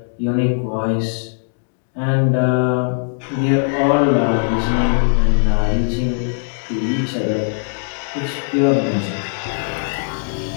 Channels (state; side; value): silent; right; digital silence